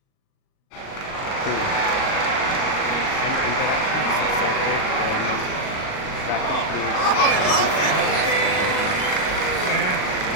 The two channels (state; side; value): late; right; 38 ms